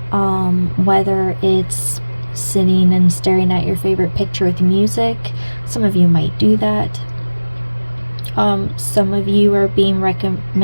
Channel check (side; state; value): both; inverted; correlation -1.00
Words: whether it's sitting and staring at your favorite picture with music. Some of you might do that. Some of you are being